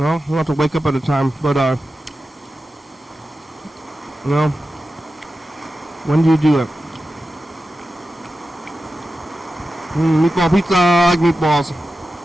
you don't have to wake up at a time. But, when do you do it? Meatball pizza, I like meatballs.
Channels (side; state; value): both; normal; correlation 0.92